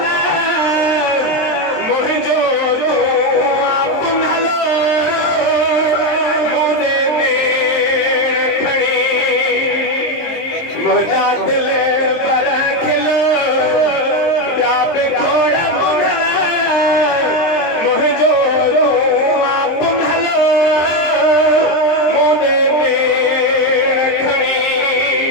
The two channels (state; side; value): late; right; 23 ms